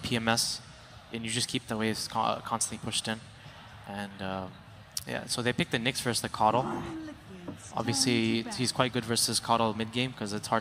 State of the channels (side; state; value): both; identical; correlation 1.00